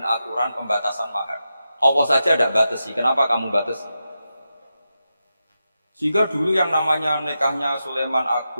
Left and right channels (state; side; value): inverted; both; correlation -0.89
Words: aturan pembatasan mahar. Allah saja tidak batasi, kenapa kamu batasi? Sehingga dulu yang namanya nikahnya Sulaiman